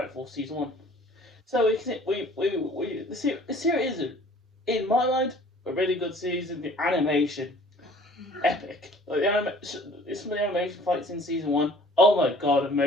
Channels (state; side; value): normal; both; correlation 0.51